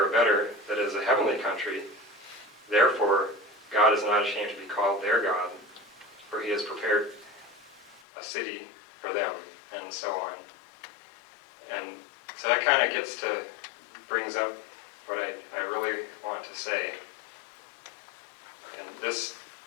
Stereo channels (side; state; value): right; drops out; at 8.0 s